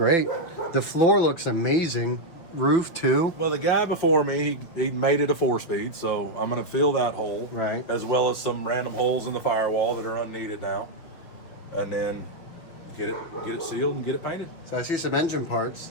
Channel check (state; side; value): late; right; 6.3 ms